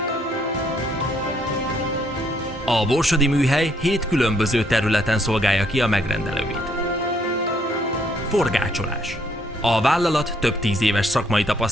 A borsodi műhely 7 különböző területen szolgálja ki a megrendelőit. Forgácsolás. A vállalat több 10 éves szakmai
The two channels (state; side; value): normal; both; correlation 0.69